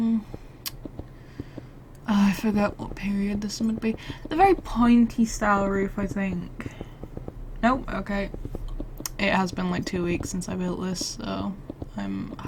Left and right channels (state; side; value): identical; both; correlation 1.00